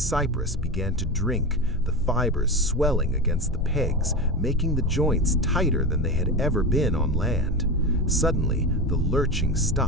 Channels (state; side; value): normal; both; correlation 0.22